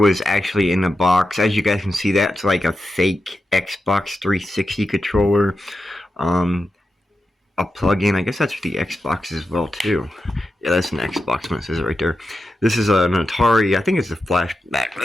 actually in the box. As you guys can see, that's like a fake Xbox 360 controller. a plug-in. I guess that's for the Xbox as well too. Yeah, that's an Xbox when it says it right there. This is an Atari. I think it's a flashback.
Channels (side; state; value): both; normal; correlation 0.89